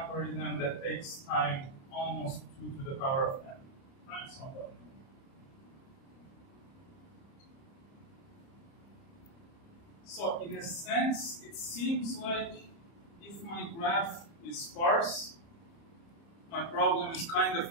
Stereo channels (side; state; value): right; late; 30 ms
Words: that takes time almost 2 to the power of n times somebody. So in a sense, it seems like if my graph is sparse, my problem is kind